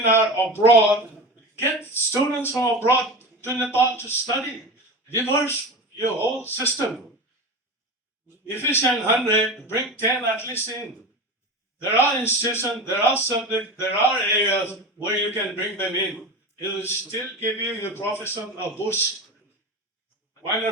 abroad, get students from abroad to Nepal to study, reverse your whole system. Efficient 100, bring 10 at least in. There are institutions, there are subjects, there are areas where you can bring them in. It will still give you your profession a boost. Why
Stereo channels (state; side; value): normal; both; correlation 0.27